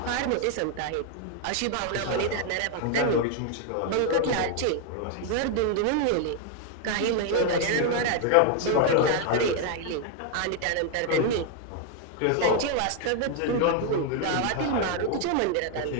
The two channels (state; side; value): different; both; correlation 0.00